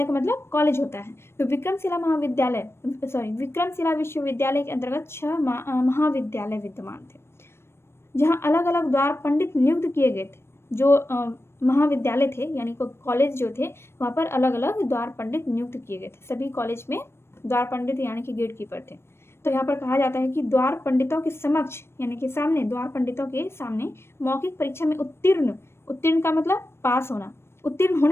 का मतलब कॉलेज होता है। तो विक्रमशिला विश्वविद्यालय के अंतर्गत 6 महाविद्यालय विद्यमान थे जहां अलग अलग द्वार पंडित नियुक्त किए गए थे। जो महाविद्यालय थे यानी कॉलेज जो थे वहां पर अलग अलग द्वार पंडित नियुक्त किए गए थे। सभी कॉलेज में द्वार पंडित यानी कि गेट कीपर थे। तो यहाँ पर कहा जाता है कि द्वार पंडितों के समक्ष यानी कि सामने, द्वार पंडितों के सामने मौखिक परीक्षा में उत्तीर्ण का मतलब पास होना, उत्तीर्ण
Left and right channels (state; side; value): late; right; 0.12 ms